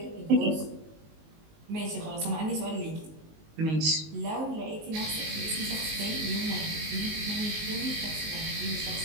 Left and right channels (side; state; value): left; late; 19 ms